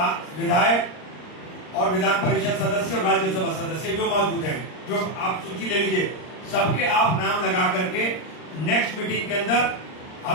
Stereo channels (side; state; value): right; late; 39 ms